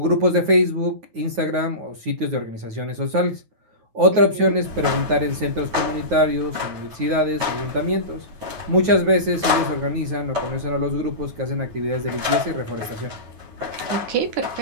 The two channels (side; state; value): left; late; 9.4 ms